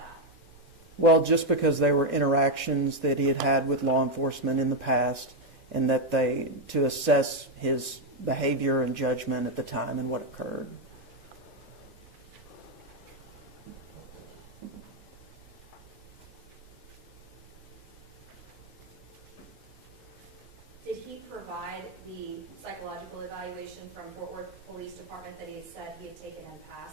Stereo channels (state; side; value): normal; both; correlation 0.03